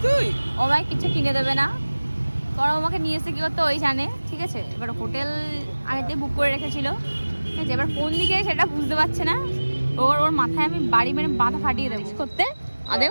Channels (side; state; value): both; inverted; correlation -1.00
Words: তুই? ও আমায় কিছু কিনে দেবে না, কারণ আমাকে নিয়ে এসে কি করতে ওই জানে, ঠিক আছে? এবার হোটেল আগেতে বুক করে রেখেছিল, ঠিক আছে? এবার কোন দিকে সেটা বুঝতে পারছে না। ওর মাথায় আমি বাড়ি মেরে মাথা ফাটিয়ে দেবো করতে